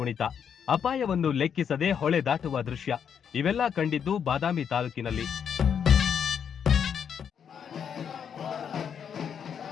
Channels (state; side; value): quieter; right; 7.7 dB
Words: ಅಪಾಯವನ್ನು ಲೆಕ್ಕಿಸದೆ ಹೊಳೆ ದಾಟುವ ದೃಶ್ಯ ಇವೆಲ್ಲ ಕಂಡಿದ್ದು ಬಾದಾಮಿ ತಾಲೂಕಿನಲ್ಲಿ.